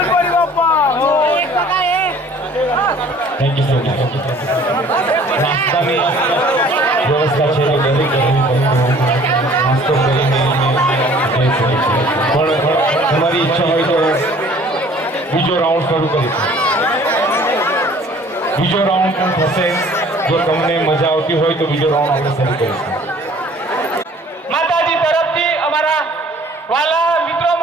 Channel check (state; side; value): normal; both; correlation 0.53